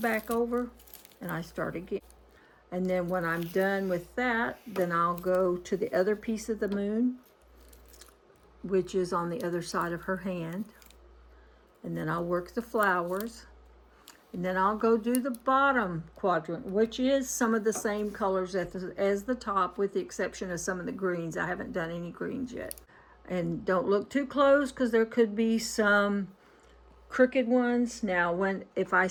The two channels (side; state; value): both; identical; correlation 1.00